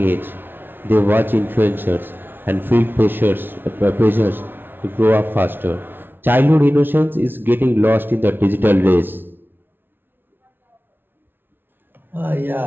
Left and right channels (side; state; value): left; late; 0.10 ms